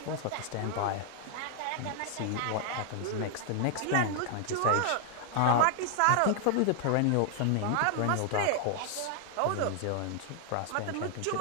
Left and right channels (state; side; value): different; both; correlation 0.00